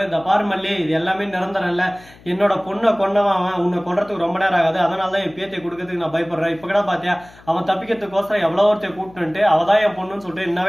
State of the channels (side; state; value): left; noise; hum, 24 dB below the sound